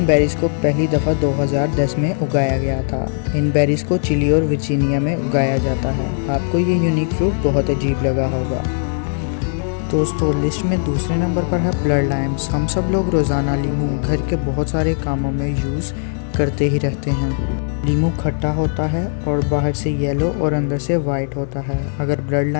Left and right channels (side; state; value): right; silent; 67 dB below the other